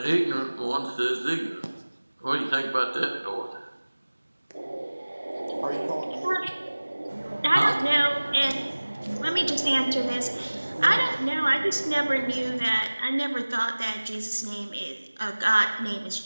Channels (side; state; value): both; inverted; correlation -1.00